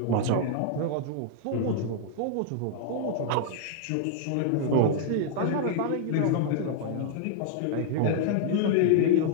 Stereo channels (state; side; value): different; both; correlation -0.01